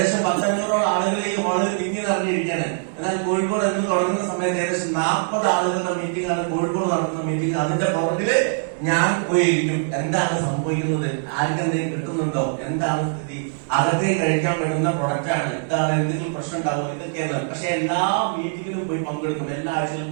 100-500 ആളുകൾ ഈ ഹാളിൽ തിങ്ങി നിറഞ്ഞിരിക്കുകയാണ്. എന്നാൽ കോഴിക്കോട് എന്ന് തുടങ്ങുന്ന സമയത്ത് ഏകദേശം 40 ആളുകളുടെ മീറ്റിംഗ് ആണ് കോഴിക്കോട് നടത്തുന്ന മീറ്റിംഗ്. അതിന്റെ പുറകില് ഞാൻ പോയിരിക്കും. എന്താണ് സംഭവിക്കുന്നത്, ആർക്കെന്തെങ്കിലും കിട്ടുന്നുണ്ടോ, എന്താണ് സ്ഥിതി, അകത്തേക്ക് കഴിക്കാൻ പറ്റുന്ന പ്രൊഡക്റ്റ് ആണ്, എന്താണ് എന്തെങ്കിലും പ്രശ്നം ഉണ്ടാവും, ഇതൊക്കെയാണ്. പക്ഷെ എല്ലാ മീറ്റിംഗിലും പോയി പങ്കെടുക്കും. എല്ലാ ആഴ്ചയിലും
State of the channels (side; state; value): left; silent; digital silence